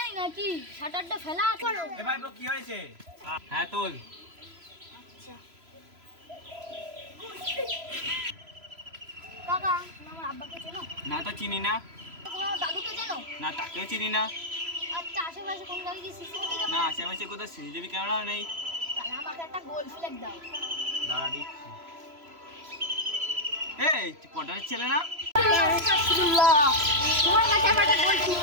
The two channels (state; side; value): late; left; 3.0 ms